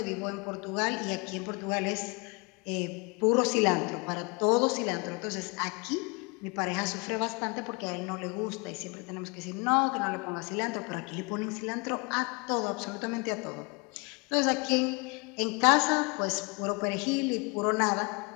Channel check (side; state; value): right; quieter; 29.7 dB